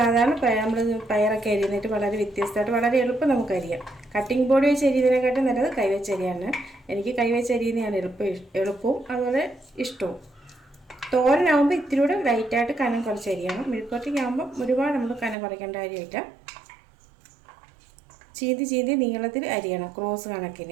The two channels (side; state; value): left; drops out; at 15.4 s